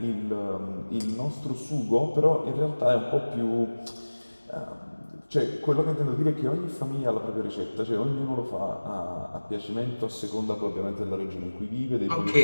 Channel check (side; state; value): both; inverted; correlation -1.00